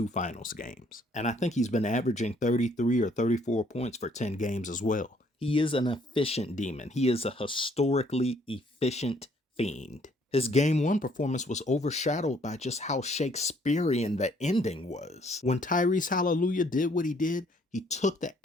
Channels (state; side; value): normal; both; correlation 0.64